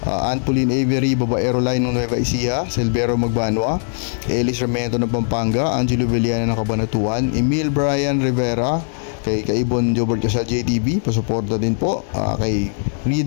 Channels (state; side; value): silent; right; digital silence